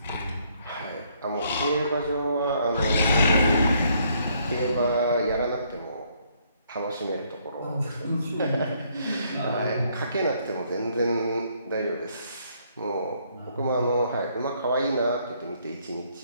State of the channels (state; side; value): inverted; both; correlation -0.69